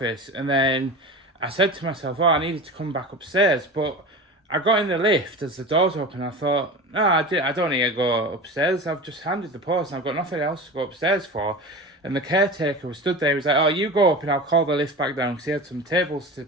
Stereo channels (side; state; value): both; normal; correlation 0.31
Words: and then I said to myself, oh, I needed to come back upstairs, but I got in the lift as the doors open. I thought, no, I don't need to go upstairs. I've just handed the post and I've got nothing else to go upstairs for. And the caretaker was stood there. He was like, oh, you go up and I'll call the lift back down, because he had some tables to